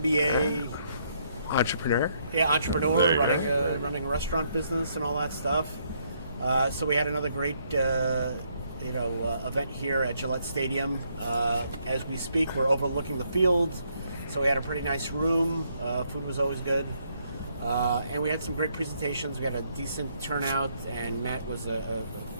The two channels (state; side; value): inverted; both; correlation -0.72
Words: entrepreneur. Yeah, entrepreneur, running a restaurant business and all that stuff. So we had another great, event here at Gillette Stadium. As we speak, we're overlooking the field, so we had a pretty nice room. Food was always good, and we had some great presentations. We had a decent turnout, and Matt was, of